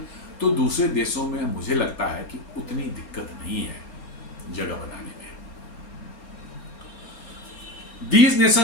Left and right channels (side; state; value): right; late; 4.3 ms